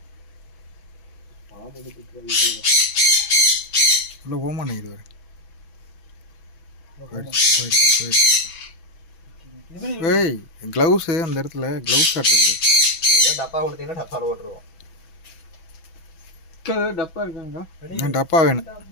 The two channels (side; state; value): right; late; 6.1 ms